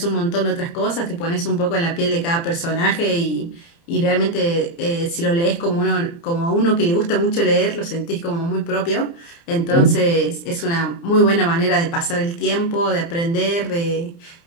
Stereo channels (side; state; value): right; late; 29 ms